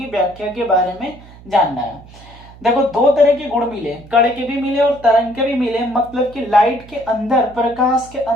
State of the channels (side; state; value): right; noise; hum, 21 dB below the sound